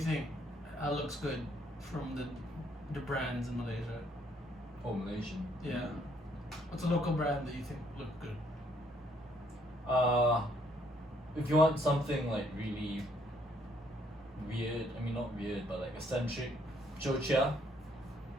looks good from the brands in Malaysia? Oh, Malaysian. Yeah. What's a local brand that you think look good? If you want something like really weird, I mean not weird, but like eccentric, Jocha.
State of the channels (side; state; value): both; normal; correlation 0.67